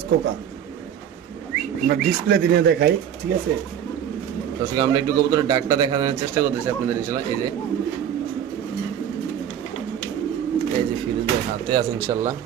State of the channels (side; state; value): left; quieter; 9.3 dB